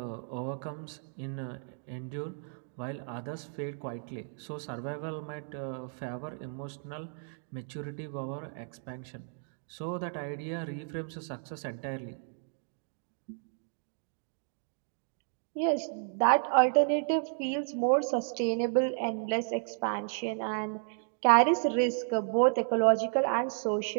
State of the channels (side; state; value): left; silent; digital silence